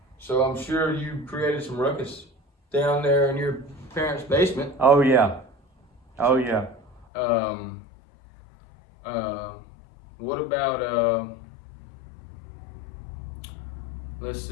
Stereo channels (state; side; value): drops out; right; at 7.1 s